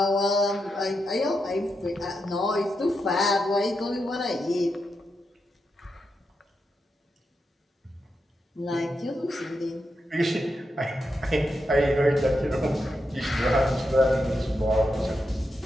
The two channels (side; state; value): both; normal; correlation 0.85